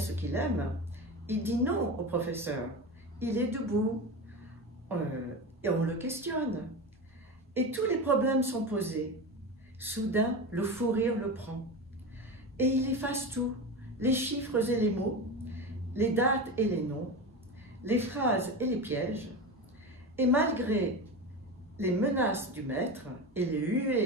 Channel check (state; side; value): normal; both; correlation 0.24